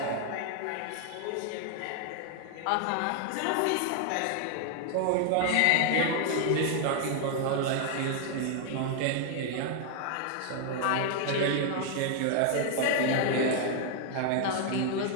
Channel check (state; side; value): different; both; correlation 0.00